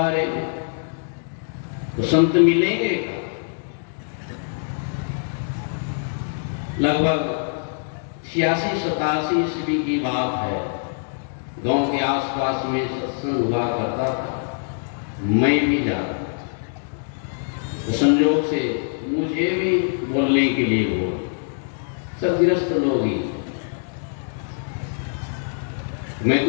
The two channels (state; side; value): silent; right; digital silence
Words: रे, तो संत मिलेंगे। लगभग 86-87 ईस्वी की बात है। गांव के आसपास में सत्संग हुआ करता था, मैं भी जाता। तो संयोग से मुझे भी बोलने के लिए बोल, सब गृहस्थ लोग ही, मैं